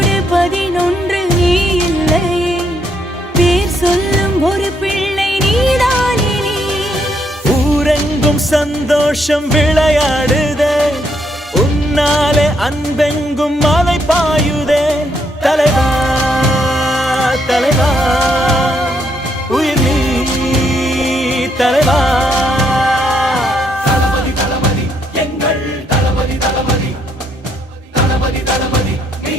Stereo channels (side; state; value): both; normal; correlation 0.74